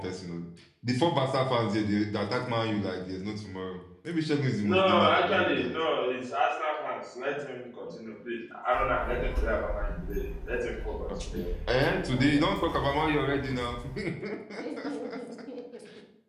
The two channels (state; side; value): identical; both; correlation 1.00